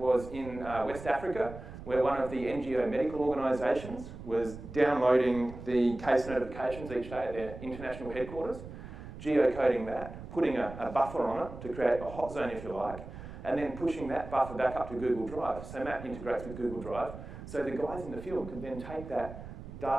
in West Africa, where one of the NGO medical organisations was downloading the case notifications each day at their international headquarters, geocoding that, putting a buffer on it to create a hot zone, if you like, and then pushing that buffer back up to Google Drive. So MAP integrates with Google Drive. So the guys in the field could then take that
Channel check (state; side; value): noise; right; rumble, 12 dB below the sound